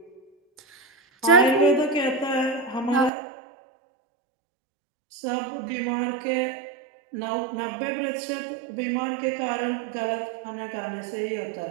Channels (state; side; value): drops out; left; at 3.1 s